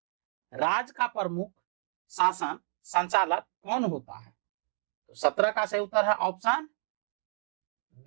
राज्य का प्रमुख शासन संचालक कौन होता है। तो 17 का सही उत्तर है ऑप्शन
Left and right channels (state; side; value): silent; left; digital silence